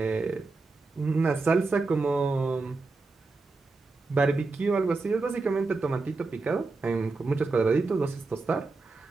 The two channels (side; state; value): left; quieter; 3.7 dB